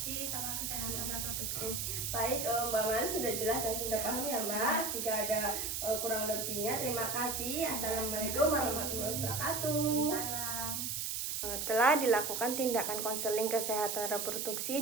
sama kesehatan reproduksi. Baik, Mbak Man sudah jelas dan sudah paham ya Mbak. Jika ada kurang lebihnya, terima kasih. Assalamualaikum warahmatullahi wabarakatuh. Salam. Telah dilakukan tindakan konseling kesehatan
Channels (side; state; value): right; noise; hiss, 2 dB below the sound